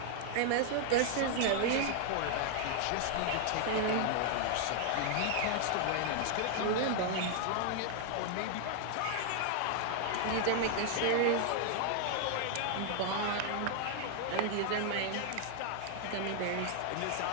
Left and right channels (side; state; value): both; different; correlation 0.00